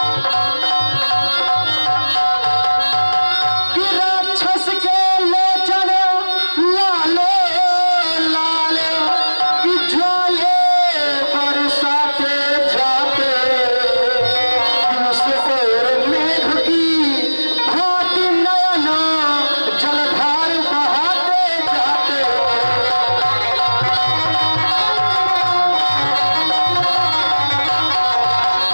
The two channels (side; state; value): both; inverted; correlation -1.00